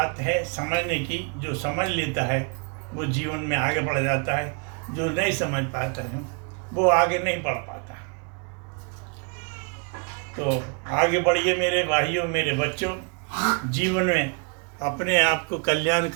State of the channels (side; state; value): left; quieter; 36.6 dB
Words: है समझने की। जो समझ लेता है वो जीवन में आगे बढ़ जाता है, जो नहीं समझ पाता है वो आगे नहीं बढ़ पाता। तो आगे बढ़िए मेरे भाइयों, मेरे बच्चों, जीवन में अपने आप को कल्याण